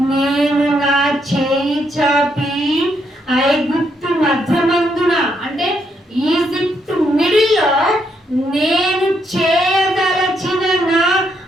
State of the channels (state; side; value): normal; both; correlation 0.76